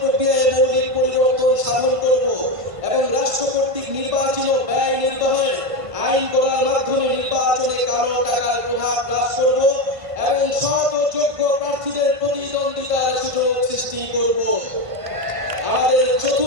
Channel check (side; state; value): left; late; 1.5 ms